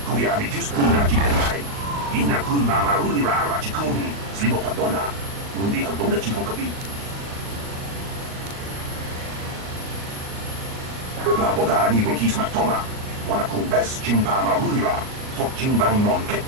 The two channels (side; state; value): left; late; 38 ms